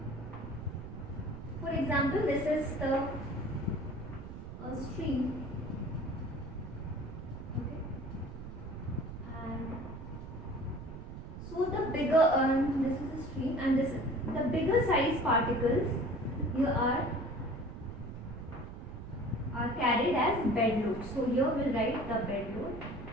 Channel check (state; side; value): noise; right; rumble, 10 dB below the sound